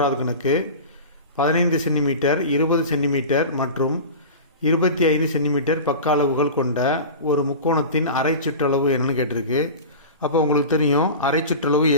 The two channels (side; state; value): both; inverted; correlation -0.32